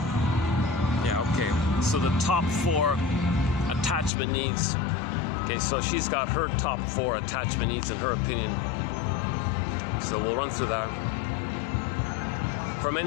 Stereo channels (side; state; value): right; drops out; at 4.1 s